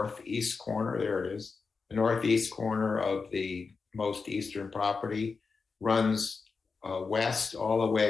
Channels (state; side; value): quieter; right; 4.8 dB